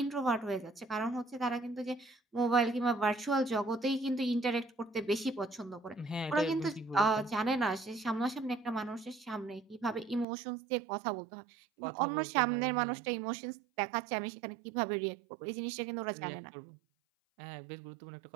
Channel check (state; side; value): drops out; left; at 10.2 s